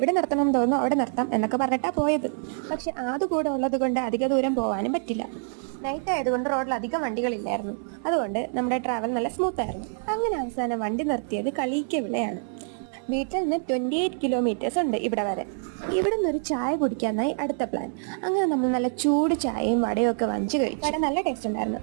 നിർത്തണം തോന്നുന്നു അവിടെ നിർത്താം എന്നൊക്കെ പറഞ്ഞിട്ടാണ് പോയത്. പക്ഷെ അത് കൂടെ ഉള്ളത് കൊണ്ട് അധിക ദൂരം പോകാനും പറ്റില്ല. നൈറ്റ് ആയതുകൊണ്ട് റോഡിൽ അധികം വണ്ടികളില്ലായിരുന്നു. അതുകൊണ്ട് നമ്മുടെ ട്രാവൽ നല്ല സ്മൂത്ത് ആയിരുന്നു. അങ്ങനെ അവസാനം വണ്ടി നിർത്തിയത് കളിയിക്കവിളയാണ്. വീട്ടിൽ നിന്ന് 28 കിലോമീറ്റേഴ്സ് ഉണ്ട് ഇവിടെ വരെ. ഇവിടെ നിന്ന് ഒരു ചായ കുടിക്കാനായി അടുത്ത പ്ലാൻ. അങ്ങനെ നമ്മൾ നല്ല ചൂട് ചായയും വടയും ഒക്കെ വാങ്ങിച്ചു കഴിച്ചു. വട നല്ല ടേസ്റ്റ് ഉണ്ടായിരുന്നു.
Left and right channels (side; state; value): left; silent; digital silence